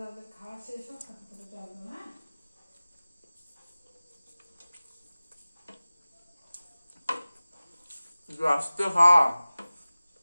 খাওয়া শেষ হোক, তারপরে চলবো না। আস্তে খা।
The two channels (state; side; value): inverted; both; correlation -0.97